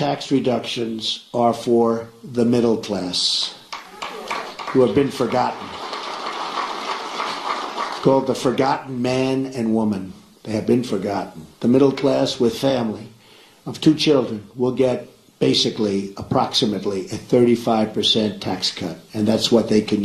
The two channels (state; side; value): identical; both; correlation 1.00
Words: reductions are for the middle class, who have been forgotten. Called the forgotten man and woman. They have been forgotten. The middle class with family of 2 children will get basically approximately a 35% tax cut, and that's what they can